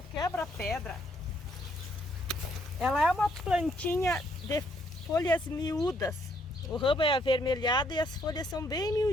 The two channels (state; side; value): normal; both; correlation 0.70